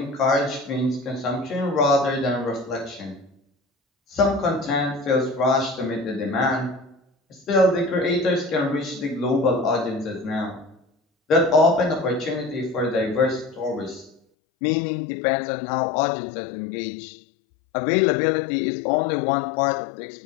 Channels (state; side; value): drops out; right; at 14.2 s